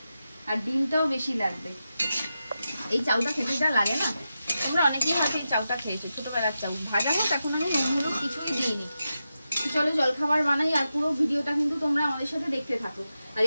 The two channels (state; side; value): inverted; both; correlation -0.90